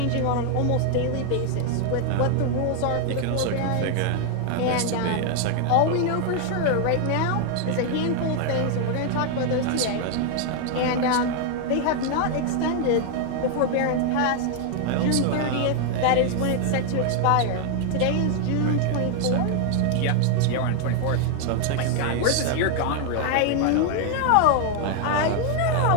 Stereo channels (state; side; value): different; both; correlation 0.00